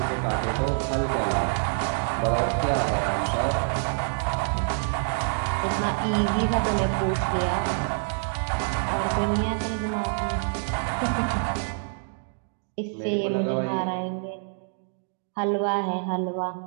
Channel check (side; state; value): left; silent; digital silence